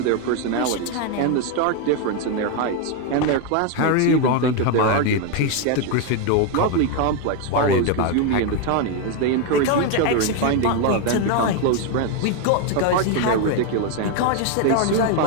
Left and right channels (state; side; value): different; both; correlation 0.01